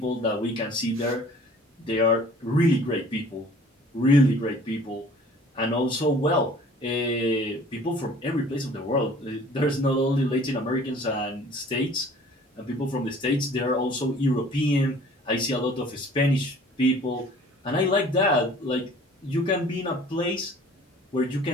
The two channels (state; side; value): normal; both; correlation 0.51